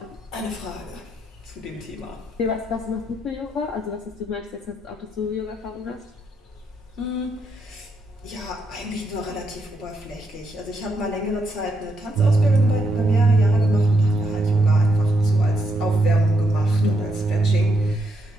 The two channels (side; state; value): both; normal; correlation 0.78